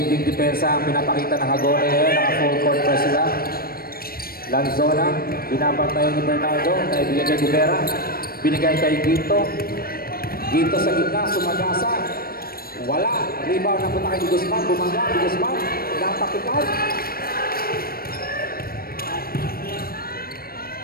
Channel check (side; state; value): right; late; 0.44 ms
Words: depensa ang pinapakita ng Hagone ngayon. Naka full court press sila. Lanzona, binabantayan ni Bernardo. Naibigay kay Rivera. Binigay kay Gito. Gito sa gitna, sumagasa. Wala. Rebound na punta kay Di Guzman. Bumangga, Di Guzman. Natapikan.